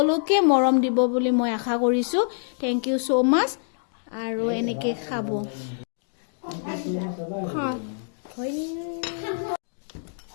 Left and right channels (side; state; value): right; silent; digital silence